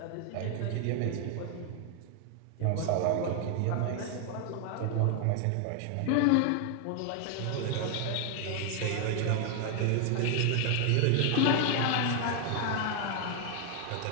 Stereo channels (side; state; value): both; different; correlation 0.00